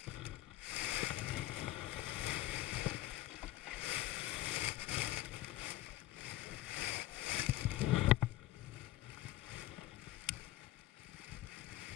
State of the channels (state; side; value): quieter; right; 15.5 dB